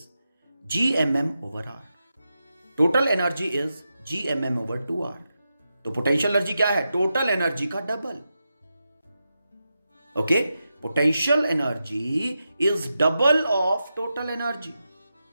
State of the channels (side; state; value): both; inverted; correlation -0.89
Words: Gmm/r, total energy is Gmm/2r। तो पोटेंशियल एनर्जी क्या है? टोटल एनर्जी का double. Okay, potential energy is double of total energy.